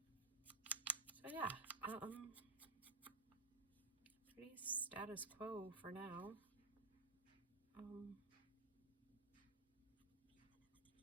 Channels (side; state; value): left; quieter; 3.7 dB